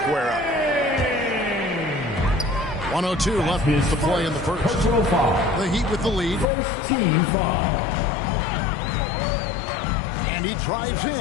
up. 1:02 left to play in the first. The Heat with the lead. First team foul. And he drives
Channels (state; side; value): drops out; right; at 6.5 s